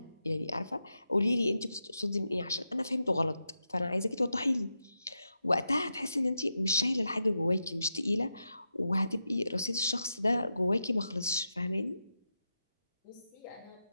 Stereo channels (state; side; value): inverted; both; correlation -0.88